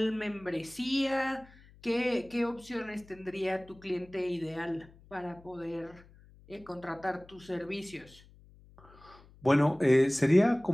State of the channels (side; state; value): left; noise; hum, 24 dB below the sound